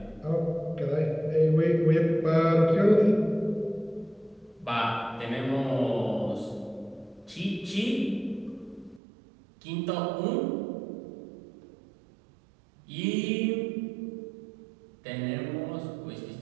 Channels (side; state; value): left; drops out; at 9.0 s